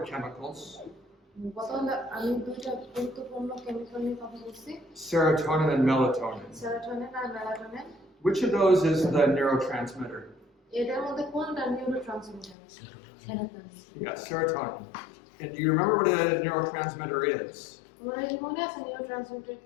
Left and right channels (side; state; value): right; drops out; at 12.6 s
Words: chemicals, serotonin and melatonin. Which of those is the neurotransmitter? Yeah, serotonin. And do you remember what a neurotransmitter is?